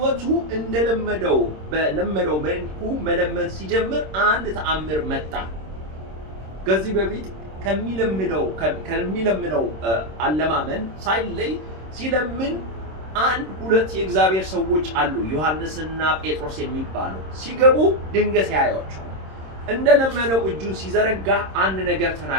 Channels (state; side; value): late; left; 26 ms